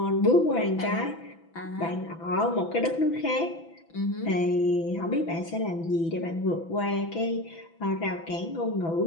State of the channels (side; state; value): right; late; 6.0 ms